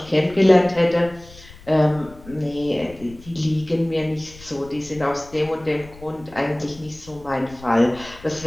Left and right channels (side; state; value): left; noise; rumble, 20 dB below the sound